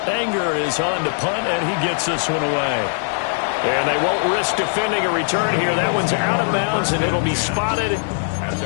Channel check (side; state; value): right; silent; digital silence